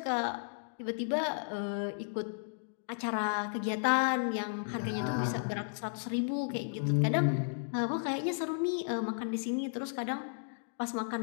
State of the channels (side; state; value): right; silent; digital silence